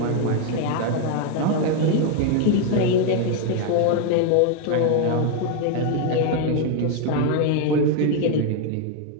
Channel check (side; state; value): both; different; correlation 0.01